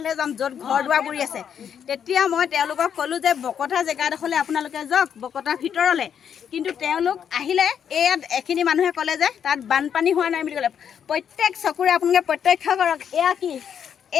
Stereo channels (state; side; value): quieter; right; 8.2 dB